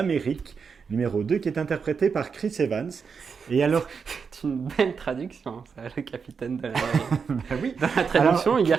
numéro 2, qui est interprété par Chris Evans. Et alors, C'est une belle traduction, ça, le capitaine de l'Amérique. bah oui, Dans la traduction, il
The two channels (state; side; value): quieter; left; 5.8 dB